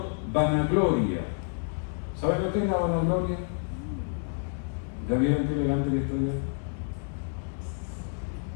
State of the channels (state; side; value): silent; right; 59 dB below the other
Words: vanagloria. ¿Sabes lo que es la vanagloria? ¿Ya vieron qué elegante que estoy?